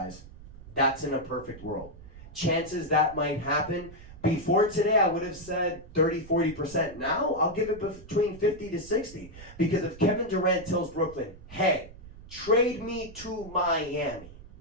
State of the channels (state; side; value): noise; right; rumble, 18 dB below the sound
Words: That's in a perfect world. Chances that might happen. Before today, I would have said 30-40%. Now, I'll give it between 50 to 60. Because if Kevin Durant tells Brooklyn, hey, trade me to Miami,